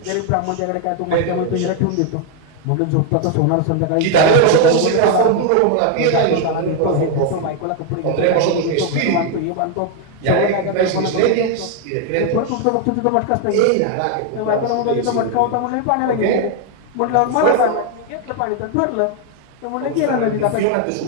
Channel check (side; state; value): both; different; correlation 0.01